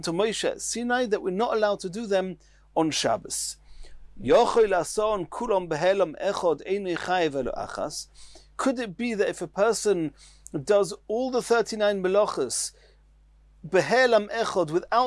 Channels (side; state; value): both; identical; correlation 1.00